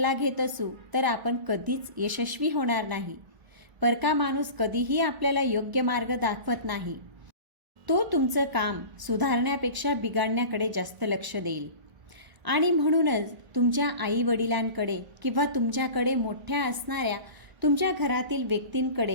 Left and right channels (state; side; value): late; left; 1.4 ms